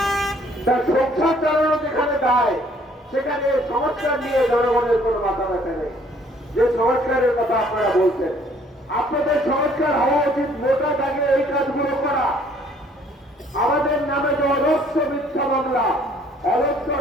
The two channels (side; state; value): both; normal; correlation 0.60